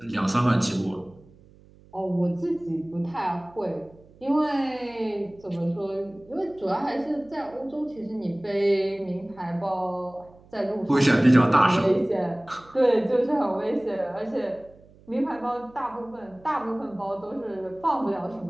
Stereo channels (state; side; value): noise; right; hum, 26 dB below the sound